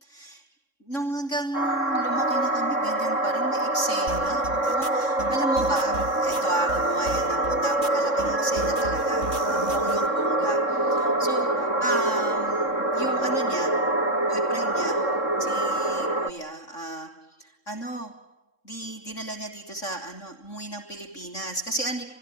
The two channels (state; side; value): late; right; 3.6 ms